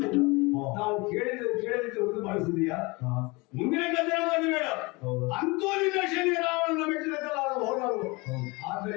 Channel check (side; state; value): right; quieter; 25.6 dB